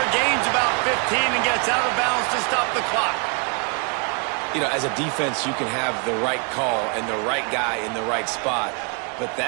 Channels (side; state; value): left; quieter; 35.4 dB